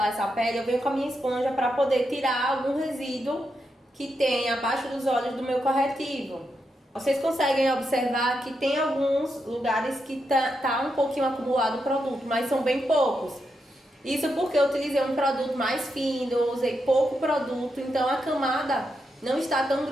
essa pele, eu venho com a minha esponja para poder tirar algum resíduo que tem abaixo dos olhos do meu corretivo. Vocês conseguem observar que tem alguns lugares que tá um pouquinho acumulado o produto, mas são bem poucos. Isso porque eu utilizei um produto mais fino, eu usei pouco produto, então a camada não está tão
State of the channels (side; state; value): both; normal; correlation 0.84